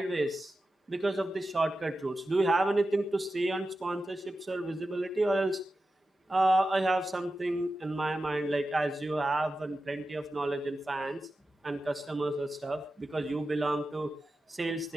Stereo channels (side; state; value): both; normal; correlation 0.92